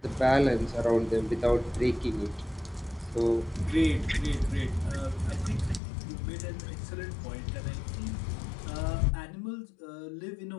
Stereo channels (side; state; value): right; drops out; at 5.8 s